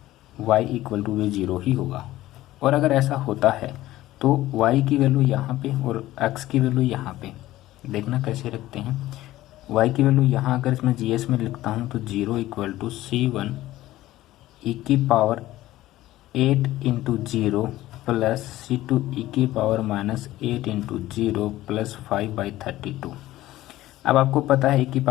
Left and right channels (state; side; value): quieter; right; 15.7 dB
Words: y इक्वल टू भी 0 ही होगा। और अगर ऐसा होता है तो y की वैल्यू यहाँ पे और x की वैल्यू यहाँ पे, देखना कैसे रखते हैं। y की वैल्यू यहाँ अगर इसमें GS में लिखता हूँ तो 0 इक्वल टू C1 e की power 8 into 0 plus C2 e की पावर माइनस 8 इंटू 0 प्लस 5/32। अब आपको पता है e की